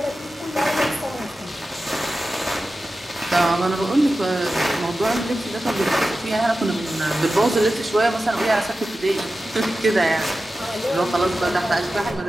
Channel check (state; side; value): normal; both; correlation 0.93